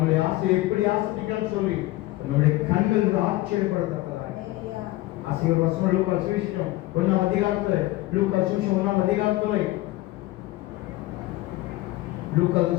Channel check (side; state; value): right; quieter; 18.1 dB